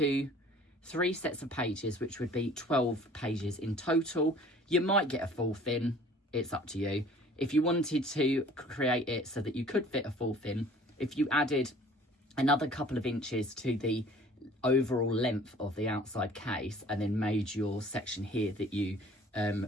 3 sets of pages, which would be 12 pages in total. You might get a 4th in, it's up to you. If you wanted to create it so that you could fit a 4th in, if you added another couple of inches to the overall length of the outside case and then made your section here that you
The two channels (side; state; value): both; normal; correlation 0.50